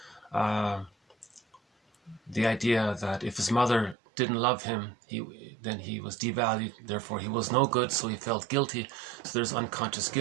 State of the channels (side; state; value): left; drops out; at 4.0 s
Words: the idea that if his mother didn't love him, then he was devalued, therefore he was no good, so he felt guilty. So there's unconscious